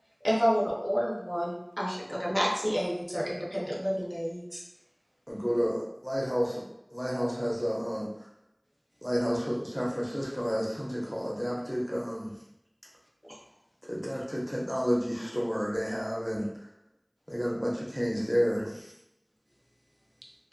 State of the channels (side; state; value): both; identical; correlation 1.00